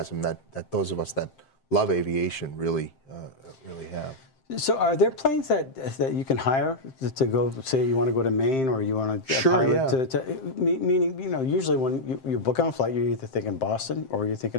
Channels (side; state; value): right; late; 7.6 ms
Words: that those of us that love aviation really have. So are there planes that you can hire to go, say you want to go to Maine or you want to pilot meaning, you know, usually when you book on a flight, you're either thinking Boston or you're